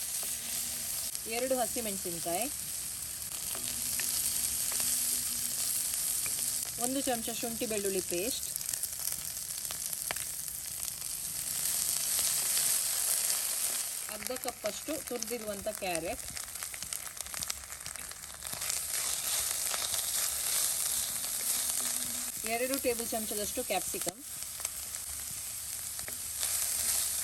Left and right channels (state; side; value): identical; both; correlation 1.00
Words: 2 ಹಸಿಮೆಣಸಿನಕಾಯಿ, 1 ಚಮಚ ಶುಂಠಿ ಬೆಳ್ಳುಳ್ಳಿ ಪೇಸ್ಟ್, ಅರ್ಧ ಕಪ್ಪಷ್ಟು ತುರಿದಿರುವಂಥ ಕ್ಯಾರೆಟ್, ಎರಡು ಟೇಬಲ್ ಚಮಚದಷ್ಟು ಕ್ಯಾಪ್ಸಿಕಮ್,